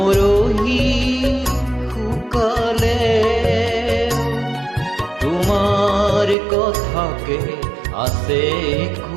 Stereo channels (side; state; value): left; drops out; at 6.4 s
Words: শুকালে। তোমাৰ কথাকে আছে